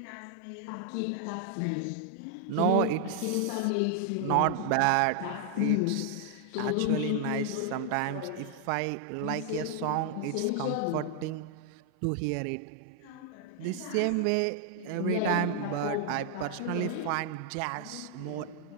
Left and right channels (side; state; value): both; different; correlation 0.00